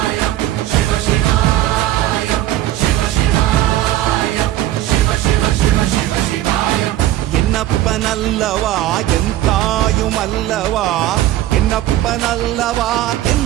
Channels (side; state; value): left; quieter; 14.1 dB